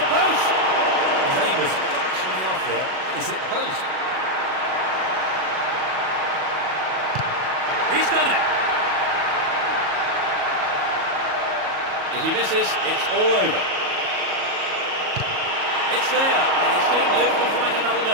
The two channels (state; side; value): late; left; 37 ms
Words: post. His aim was fractionally off there, and he's hit the post. He's done it. If he misses, it's all over. It's there, and his team live to fight another